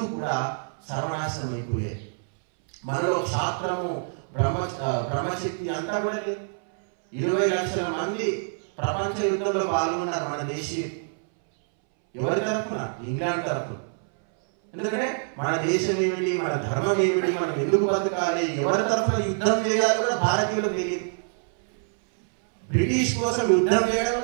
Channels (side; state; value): left; silent; 61 dB below the other